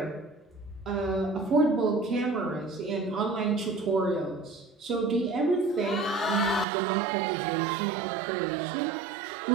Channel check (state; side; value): drops out; left; at 6.7 s